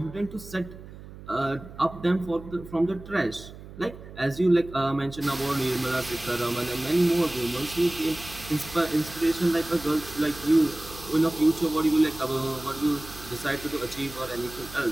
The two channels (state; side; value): noise; right; hum, 16 dB below the sound